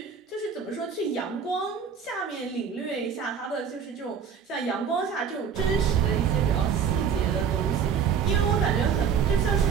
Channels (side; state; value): left; quieter; 7.0 dB